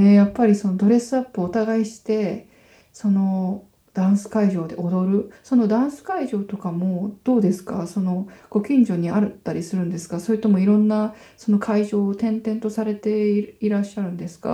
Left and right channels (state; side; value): identical; both; correlation 1.00